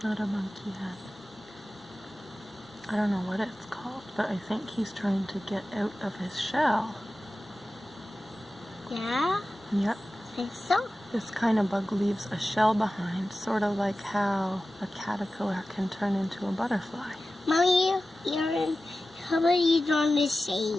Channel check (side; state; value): both; normal; correlation 0.95